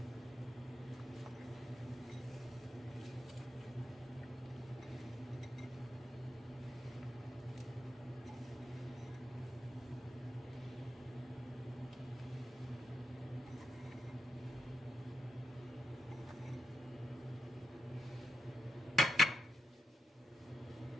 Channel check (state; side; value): normal; both; correlation 0.85